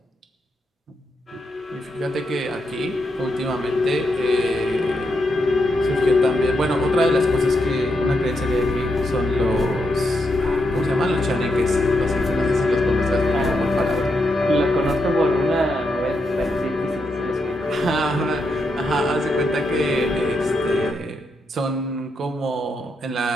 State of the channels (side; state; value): both; normal; correlation 0.82